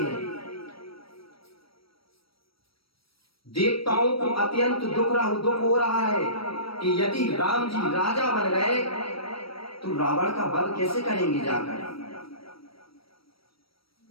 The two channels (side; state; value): right; late; 0.75 ms